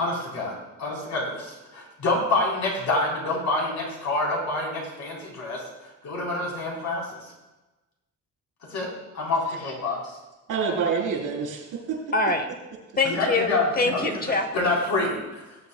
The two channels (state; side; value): normal; both; correlation 0.08